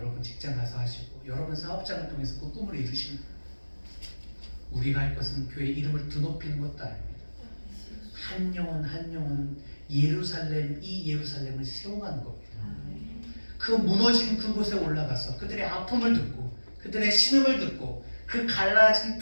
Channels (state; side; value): inverted; both; correlation -1.00